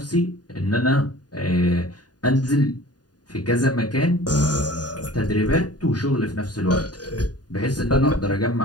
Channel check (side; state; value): right; late; 0.69 ms